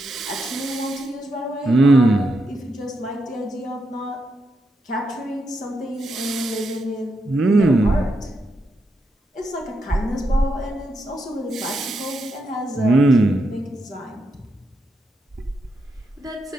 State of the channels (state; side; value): normal; both; correlation 0.83